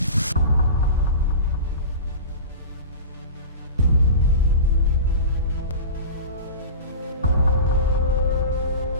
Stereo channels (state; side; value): inverted; both; correlation -0.31